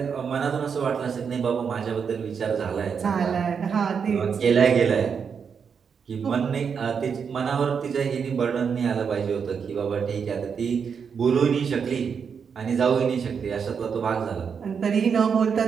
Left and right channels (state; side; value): quieter; left; 6.5 dB